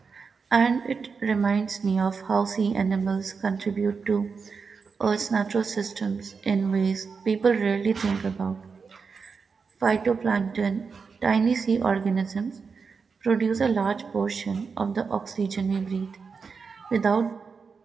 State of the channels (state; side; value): quieter; left; 5.3 dB